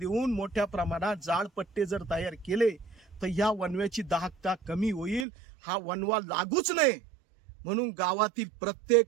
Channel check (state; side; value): drops out; left; at 5.2 s